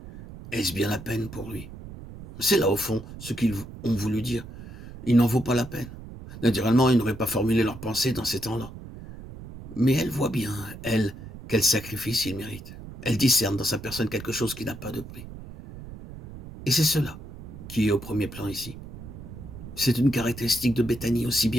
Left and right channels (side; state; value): right; noise; rumble, 14 dB below the sound